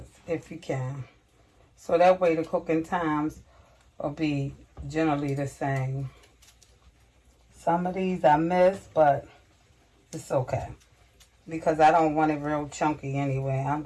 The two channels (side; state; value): both; identical; correlation 1.00